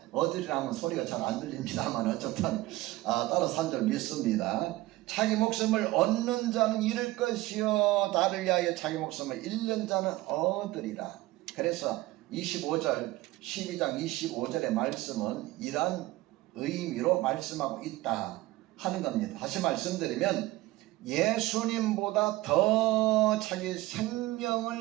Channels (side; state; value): left; quieter; 18.3 dB